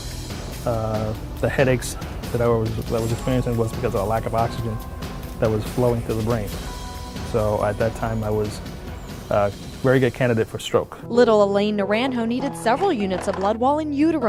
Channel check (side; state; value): both; identical; correlation 1.00